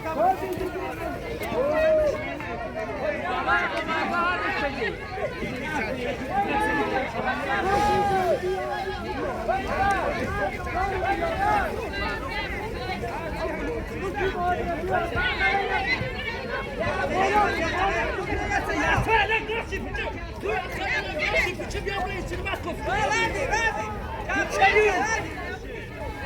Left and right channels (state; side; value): identical; both; correlation 1.00